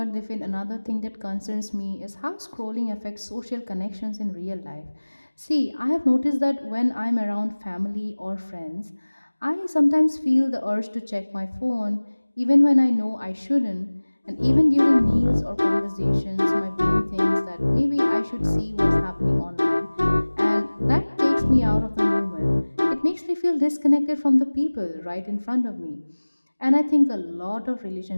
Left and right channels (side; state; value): both; inverted; correlation -1.00